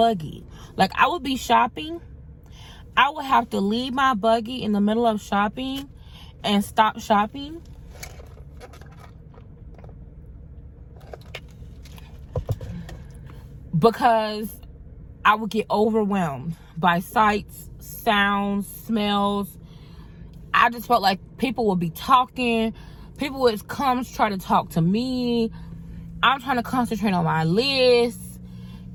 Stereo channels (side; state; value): both; identical; correlation 1.00